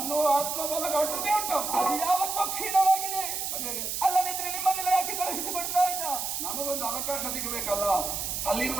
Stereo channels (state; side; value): noise; right; hiss, 3 dB below the sound